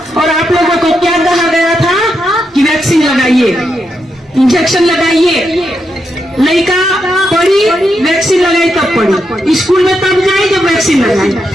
और आप लोगों को क्या कहा गया था कि वैक्सीन लगाइए, इंजेक्शन लगाइए। लड़का पढ़ी, वैक्सीन लगाई तब पढ़ी, स्कूल में तब जाई जब वैक्सीन लगाई,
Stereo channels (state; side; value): normal; both; correlation 0.83